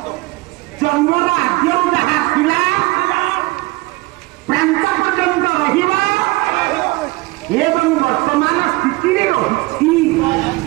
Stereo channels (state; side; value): quieter; left; 22.0 dB